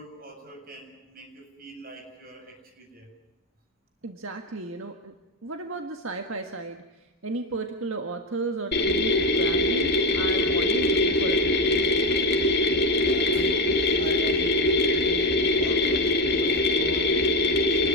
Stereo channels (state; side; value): normal; both; correlation 0.13